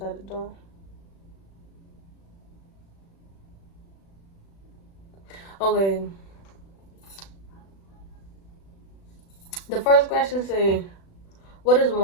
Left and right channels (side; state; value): right; late; 36 ms